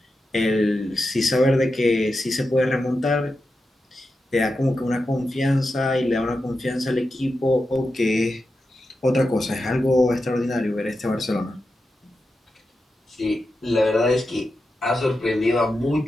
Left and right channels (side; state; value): both; normal; correlation 0.90